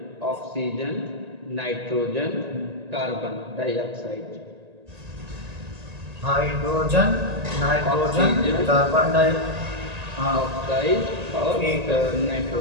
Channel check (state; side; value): late; left; 1.8 ms